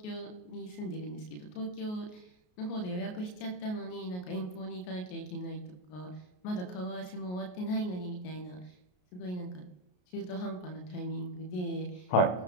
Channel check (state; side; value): late; right; 33 ms